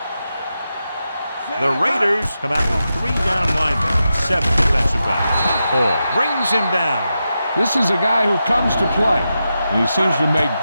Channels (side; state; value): both; inverted; correlation -0.89